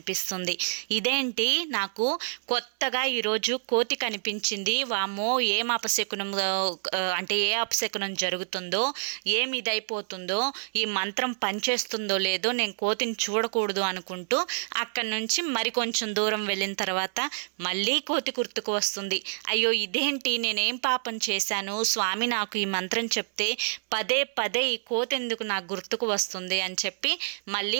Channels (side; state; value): left; silent; 60 dB below the other